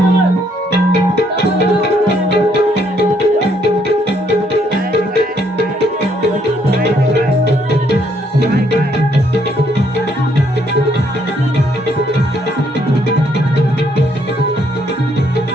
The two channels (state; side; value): normal; both; correlation 0.69